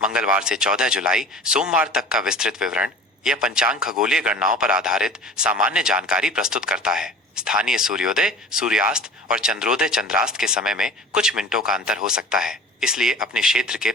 मंगलवार से 14 जुलाई सोमवार तक का विस्तृत विवरण। यह पंचांग खगोलीय गणनाओं पर आधारित सामान्य जानकारी प्रस्तुत करता है। स्थानीय सूर्योदय, सूर्यास्त और चंद्रोदय चंद्रास्त के समय में कुछ मिनटों का अंतर हो सकता है, इसलिए अपने क्षेत्र के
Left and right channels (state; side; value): normal; both; correlation 0.40